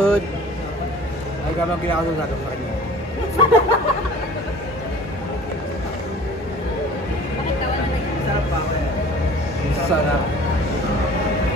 Ay, gano'n kinakasunod sa kanya. Sarap pa ako eh. Sarap.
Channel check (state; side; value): normal; both; correlation 0.46